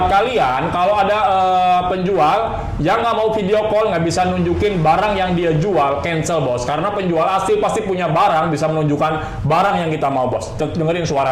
kalian, kalau ada penjual yang nggak mau video call, nggak bisa nunjukin barang yang dia jual, cancel bos. Karena penjual asli pasti punya barang, bisa menunjukkan barang yang kita mau bos. Dengerin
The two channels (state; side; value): identical; both; correlation 1.00